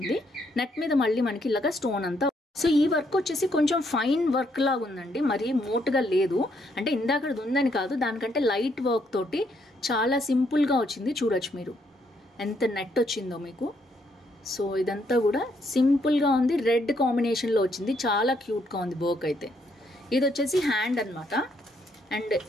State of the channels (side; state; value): both; normal; correlation 0.73